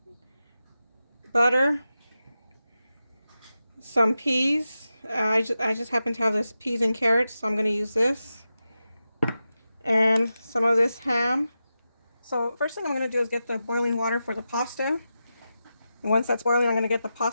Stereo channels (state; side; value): inverted; both; correlation -0.91